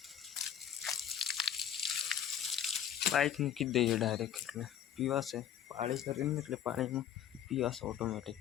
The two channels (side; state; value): right; quieter; 9.8 dB